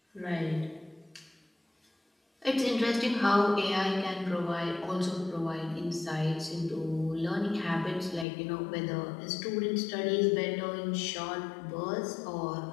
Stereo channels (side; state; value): right; drops out; at 8.2 s